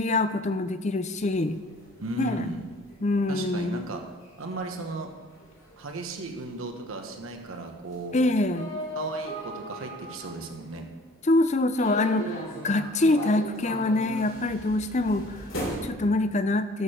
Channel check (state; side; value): normal; both; correlation 0.54